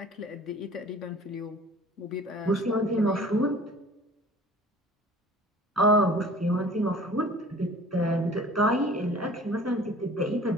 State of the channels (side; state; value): both; normal; correlation 0.47